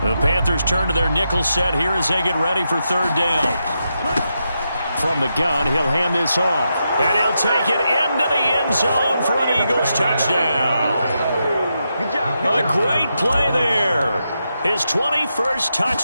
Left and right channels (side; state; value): both; inverted; correlation -0.85